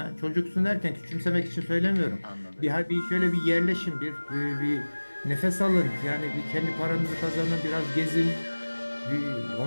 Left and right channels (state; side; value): inverted; both; correlation -1.00